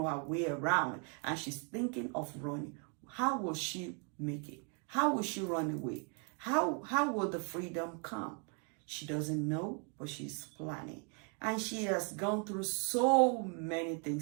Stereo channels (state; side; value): quieter; left; 38.7 dB